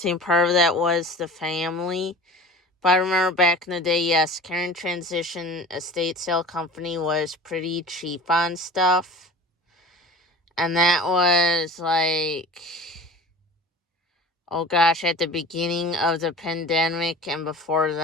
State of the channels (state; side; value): normal; both; correlation 0.39